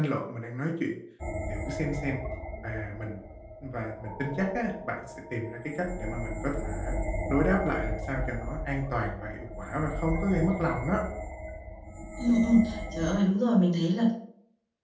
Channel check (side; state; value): both; identical; correlation 1.00